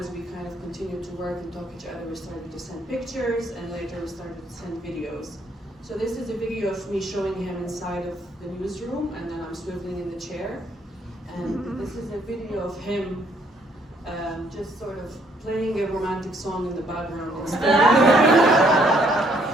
we kind of continued to work and talk to each other, we started to send pictures, and later we started to send videos. So this is a video of me showing him inside of the newsroom, and then I'm swiveling in the chair, and this is a video of him just sort of playing a romantic song in the background instead.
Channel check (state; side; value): normal; both; correlation 0.67